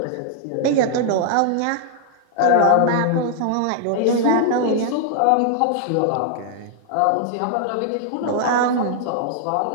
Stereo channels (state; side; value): different; both; correlation 0.00